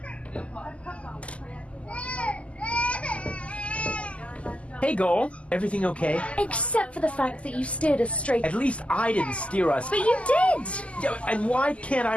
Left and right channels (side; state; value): right; late; 0.060 ms